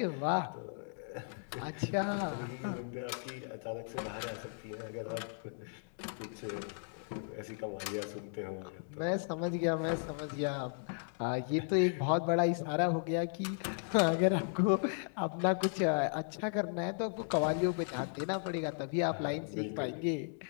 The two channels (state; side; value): silent; right; digital silence